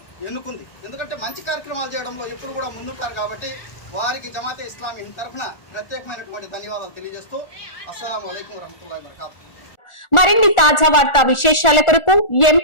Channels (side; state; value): right; late; 1.4 ms